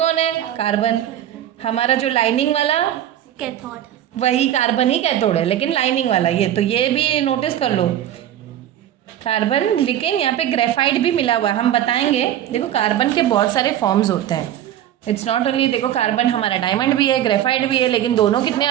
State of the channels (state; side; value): quieter; left; 11.5 dB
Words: है, कार्बन। हमारा जो लाइनिंग वाला कैथोड, वही कार्बन ही कैथोड है, लेकिन लाइनिंग वाला ये भी नोटिस कर लो, कार्बन। लेकिन यहाँ पे ग्रेफाइट भी मिला हुआ है, हम बताएंगे। देखो कार्बन के बहुत सारे फॉर्म्स होते हैं, इट्स नॉट ओनली, देखो कार्बन हमारा डायमंड भी है, ग्रेफाइट भी है, लेकिन दोनों कितने